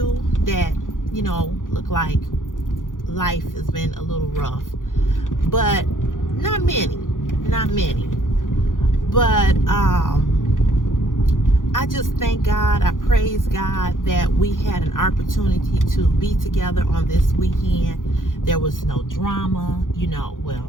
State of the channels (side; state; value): right; late; 0.89 ms